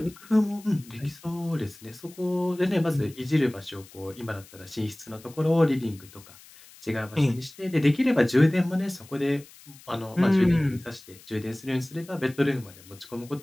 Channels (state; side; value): noise; left; hiss, 22 dB below the sound